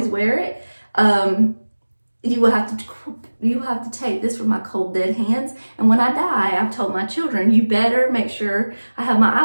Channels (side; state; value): both; inverted; correlation -1.00